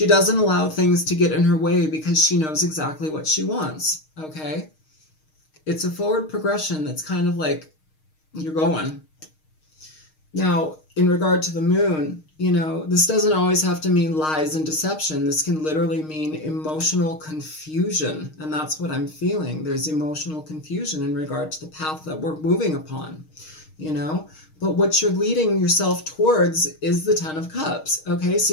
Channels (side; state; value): right; late; 6.4 ms